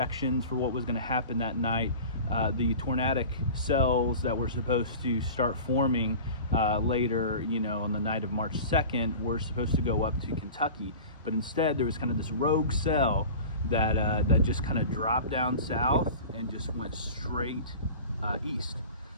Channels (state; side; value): inverted; both; correlation -0.37